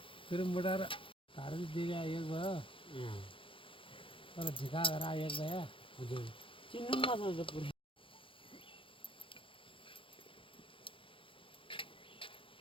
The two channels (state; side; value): late; right; 0.25 ms